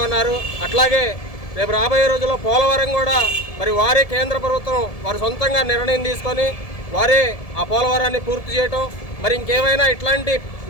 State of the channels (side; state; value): right; late; 1.7 ms